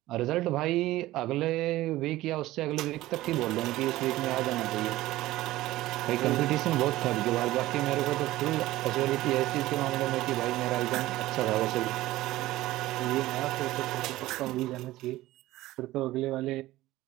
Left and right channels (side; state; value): left; quieter; 16.8 dB